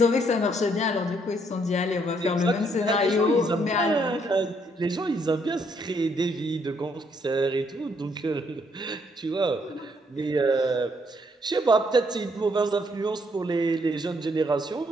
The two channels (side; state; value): both; normal; correlation 0.71